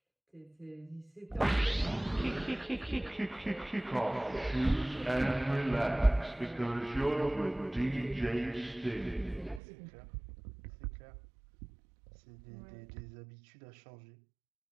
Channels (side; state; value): left; drops out; at 9.6 s